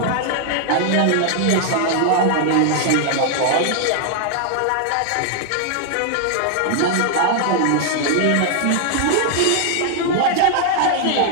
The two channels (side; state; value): both; different; correlation 0.00